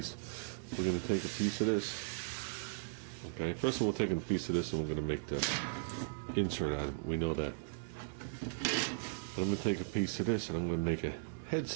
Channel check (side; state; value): left; silent; digital silence